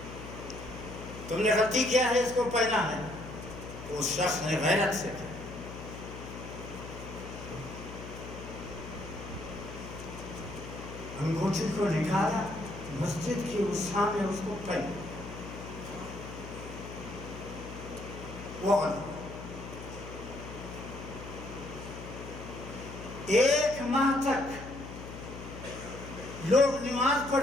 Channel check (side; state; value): left; noise; hum, 11 dB below the sound